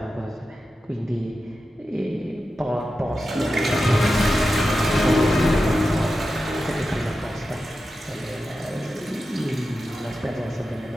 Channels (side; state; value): both; normal; correlation 0.91